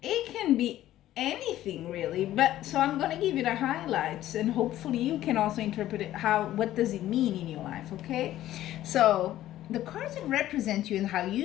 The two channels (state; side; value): quieter; right; 13.7 dB